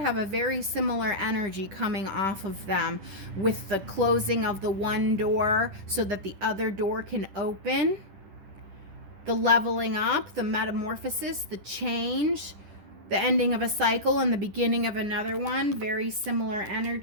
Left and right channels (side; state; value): left; late; 10 ms